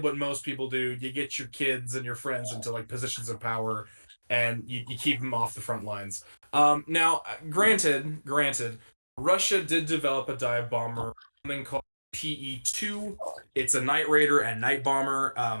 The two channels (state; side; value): inverted; both; correlation -1.00